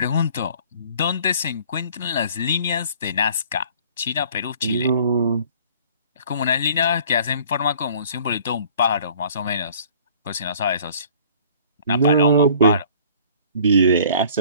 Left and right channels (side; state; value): both; inverted; correlation -0.52